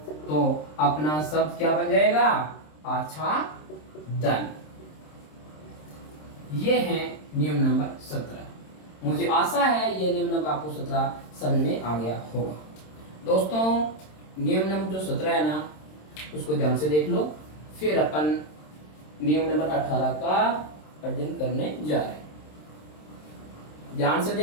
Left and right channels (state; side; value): late; right; 26 ms